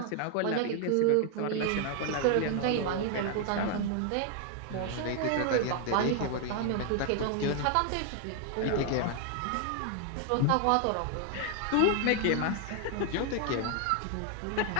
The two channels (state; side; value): different; both; correlation 0.00